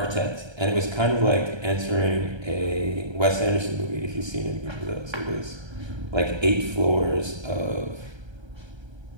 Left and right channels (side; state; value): left; late; 1.3 ms